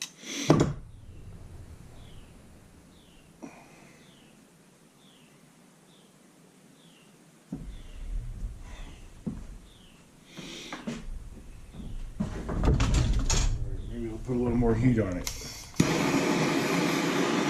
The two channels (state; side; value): identical; both; correlation 1.00